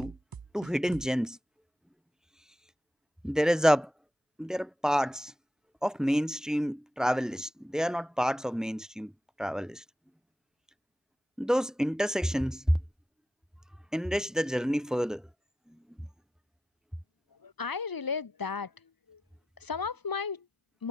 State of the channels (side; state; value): both; normal; correlation 0.90